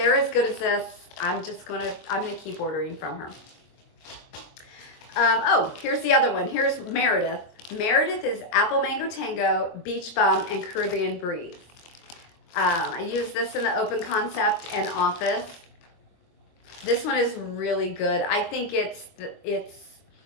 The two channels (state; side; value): late; right; 24 ms